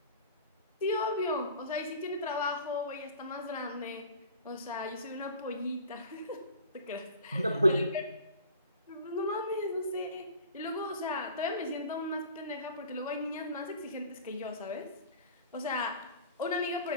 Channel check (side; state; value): both; inverted; correlation -0.42